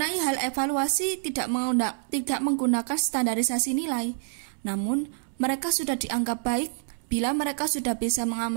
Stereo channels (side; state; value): left; silent; 60 dB below the other